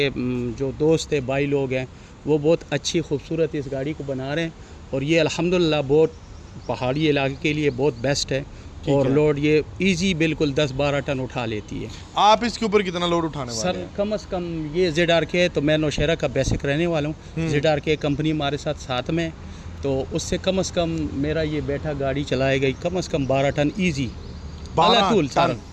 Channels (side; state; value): both; identical; correlation 1.00